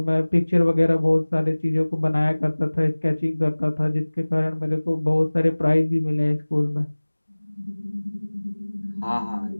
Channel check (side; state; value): both; inverted; correlation -1.00